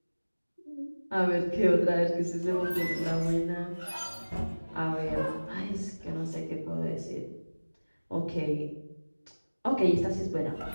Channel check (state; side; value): inverted; both; correlation -1.00